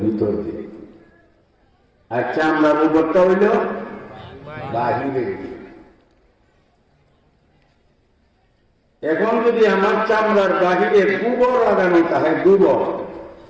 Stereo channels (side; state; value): both; identical; correlation 1.00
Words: ভিতর দিক। আর চামড়ার উপরটা হইল বাহিরের দিক। এখন যদি আমার চামড়ার বাহিরে গোবর লাগানো থাকে, গোবর